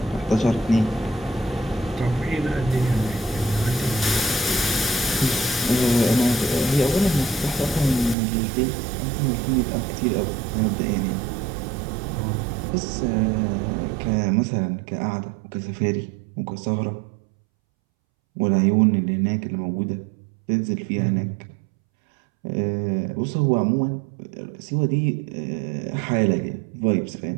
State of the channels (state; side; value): drops out; left; at 8.2 s